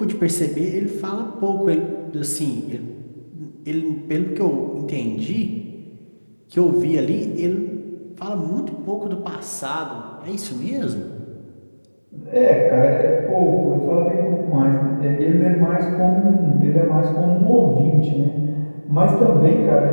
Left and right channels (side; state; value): both; inverted; correlation -1.00